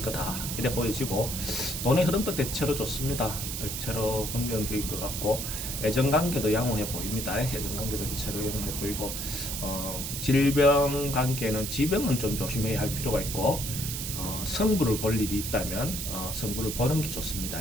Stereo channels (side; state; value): right; noise; hiss, 4 dB below the sound